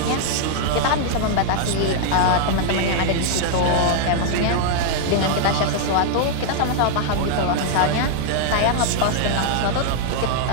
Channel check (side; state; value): both; different; correlation -0.01